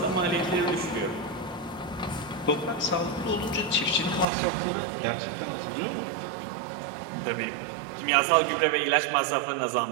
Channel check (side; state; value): left; drops out; at 4.2 s